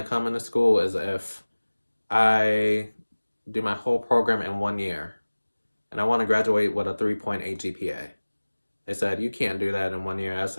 to come into school is if I do my whole program in 1 year. And I want to graduate with a 3.8 GPA. They said, you can't do that in 1 year. I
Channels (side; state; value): both; inverted; correlation -1.00